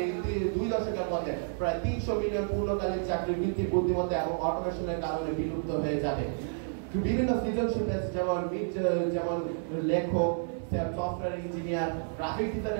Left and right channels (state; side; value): silent; left; 56 dB below the other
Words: 2 দশকের মধ্যে প্রায় 300 মিলিয়ন পূর্ণকালীন চাকরি কৃত্রিম বুদ্ধিমত্তা এবং অটোমেশনের কারণে বিলুপ্ত হয়ে যাবে। বিভিন্ন সৃজনশীল যেমন লেখক, সফটওয়্যার ইঞ্জিনিয়ার, গ্রাফিক